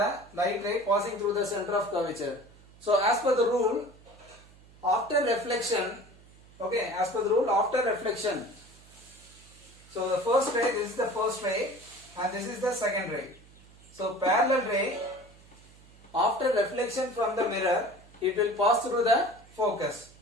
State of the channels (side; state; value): right; noise; hum, 24 dB below the sound